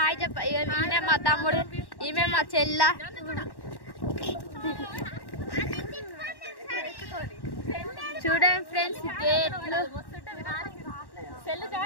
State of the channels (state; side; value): late; right; 1.1 ms